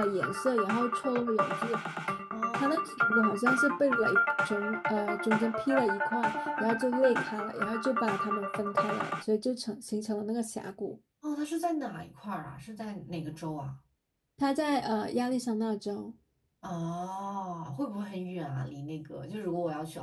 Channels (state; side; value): identical; both; correlation 1.00